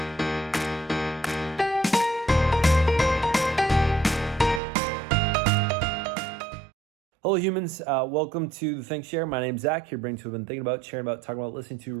Hello humans, welcome to the ThinkShare. My name's Zach, here brings who I've been thinking about, sharing about, talking about, listening to,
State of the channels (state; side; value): drops out; left; at 4.6 s